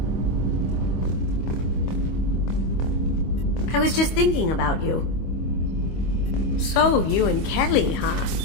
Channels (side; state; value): right; late; 25 ms